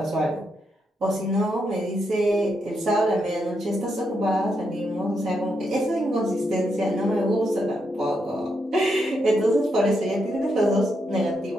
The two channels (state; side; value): normal; both; correlation 0.81